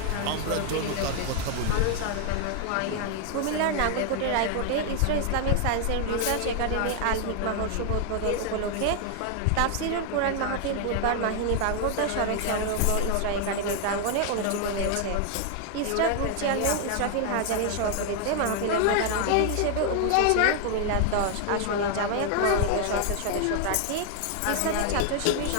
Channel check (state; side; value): different; both; correlation 0.00